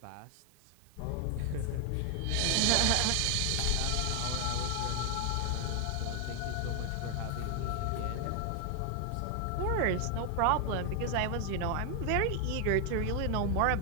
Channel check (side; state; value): both; different; correlation 0.00